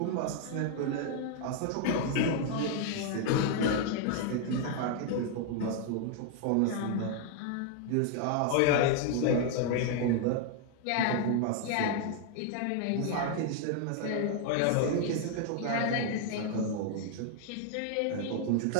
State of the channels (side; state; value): both; different; correlation 0.00